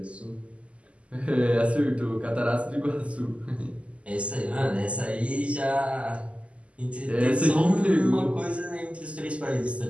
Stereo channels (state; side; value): late; left; 0.060 ms